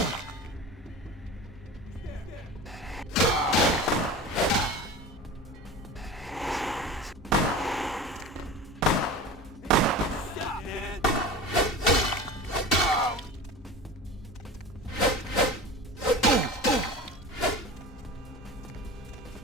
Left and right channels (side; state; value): both; normal; correlation 0.33